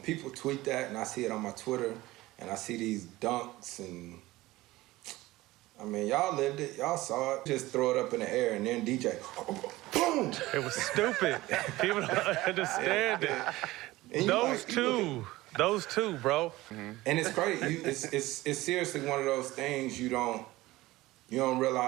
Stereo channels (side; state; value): left; quieter; 18.4 dB